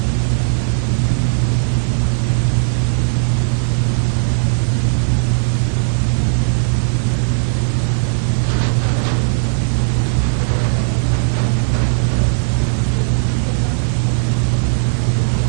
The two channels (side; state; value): left; silent; 69 dB below the other